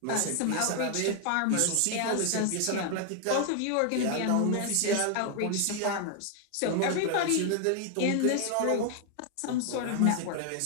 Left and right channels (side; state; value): both; different; correlation 0.00